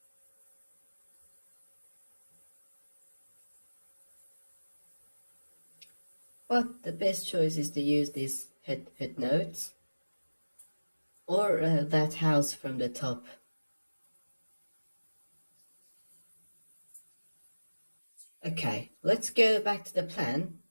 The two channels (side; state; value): both; inverted; correlation -1.00